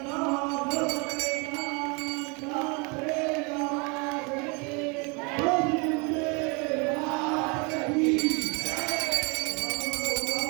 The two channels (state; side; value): quieter; left; 31.6 dB